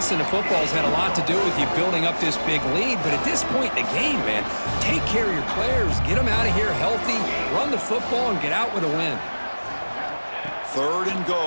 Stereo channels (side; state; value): both; inverted; correlation -1.00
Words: the football's had a lot to do with you building up this big lead, but at this point in the game, man, take care of your players. Get them out of here healthy, run the football, and get out with a win. Third and